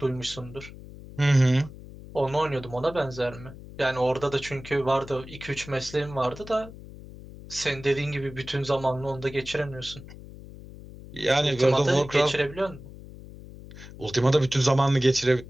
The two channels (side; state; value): left; noise; hum, 16 dB below the sound